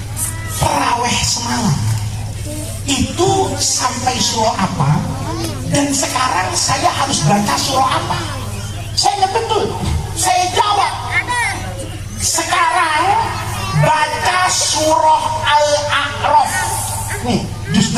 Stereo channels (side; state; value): both; identical; correlation 1.00